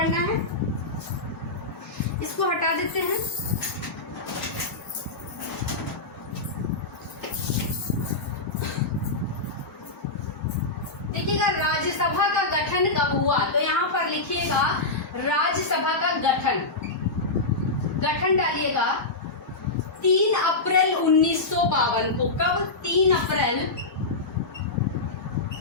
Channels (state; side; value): quieter; right; 3.2 dB